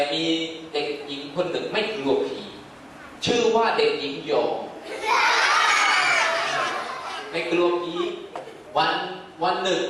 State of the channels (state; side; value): identical; both; correlation 1.00